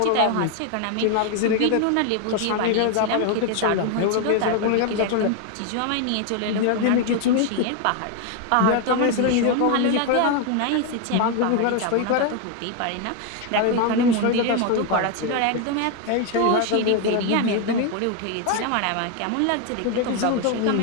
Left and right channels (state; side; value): different; both; correlation 0.01